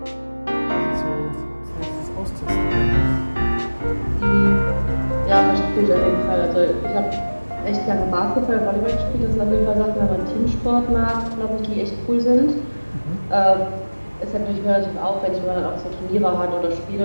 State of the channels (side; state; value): both; inverted; correlation -1.00